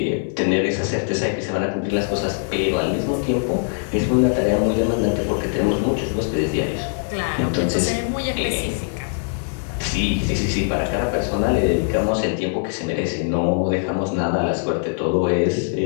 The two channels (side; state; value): right; silent; 64 dB below the other